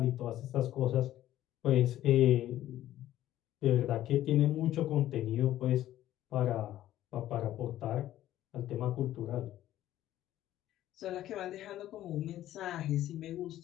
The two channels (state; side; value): quieter; right; 13.3 dB